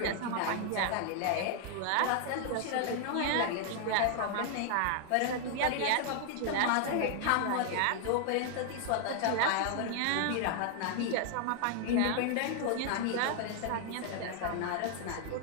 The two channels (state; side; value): different; both; correlation 0.00